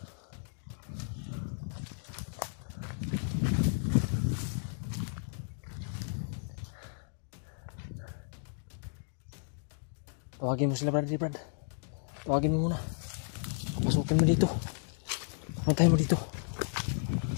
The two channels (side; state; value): right; silent; digital silence